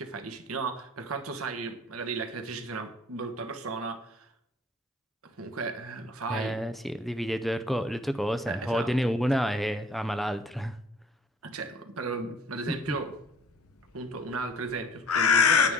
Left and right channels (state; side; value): normal; both; correlation 0.52